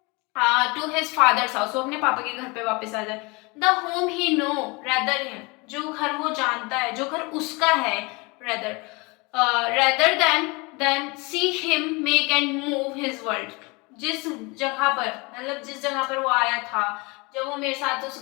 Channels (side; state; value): right; quieter; 27.0 dB